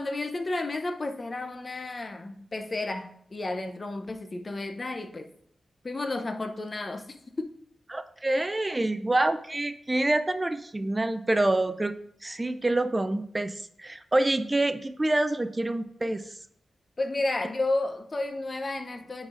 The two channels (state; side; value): normal; both; correlation 0.96